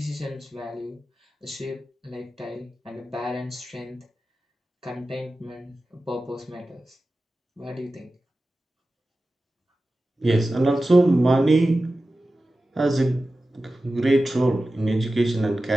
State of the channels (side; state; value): both; normal; correlation 0.94